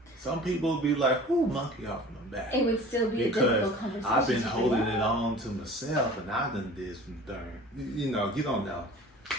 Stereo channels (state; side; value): normal; both; correlation 0.43